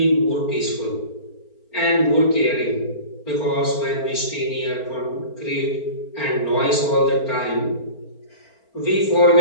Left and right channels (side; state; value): right; late; 4.4 ms